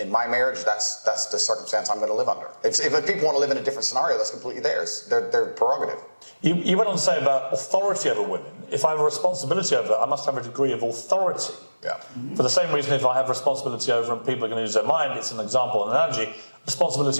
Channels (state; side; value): inverted; both; correlation -1.00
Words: my marriage. That's the circumstance I'm going to live under. If people want to live in a different scenario, that's completely theirs. Their prerogative. You went on to say about authority over women. If I have a responsibility over, I must have a degree of authority. Yeah. For the same reason, if I have responsibility over and people are going to use their mind, it's an example, an analogy.